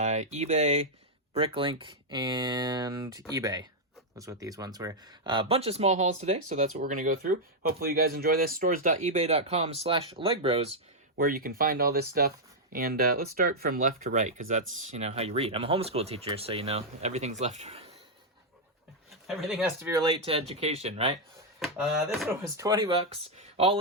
and eBay. Was what these ones were. A bunch of small hauls today, so that's what we're going to go through. Hopefully you guys enjoy this. Stores.ebay.com/Legbros, where you can find all this stuff. And let's start from left to right, because that's, how you read. I'm a homeschool teacher, so, everything's left to right. Everything has to be related to education, right? This one was 20 bucks. All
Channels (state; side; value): normal; both; correlation -0.03